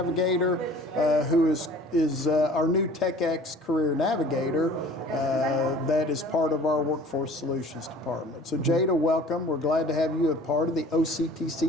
who is our new TechX Career Navigator that is part of our Workforce Solutions Department. So Jada, welcome. We're glad to have you a part of the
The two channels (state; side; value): normal; both; correlation 0.47